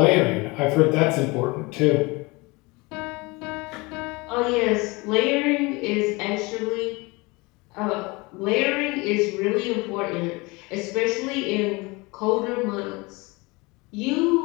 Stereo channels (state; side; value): quieter; right; 25.0 dB